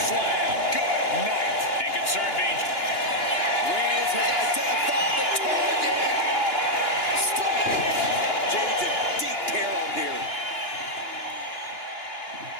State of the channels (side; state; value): right; late; 2.9 ms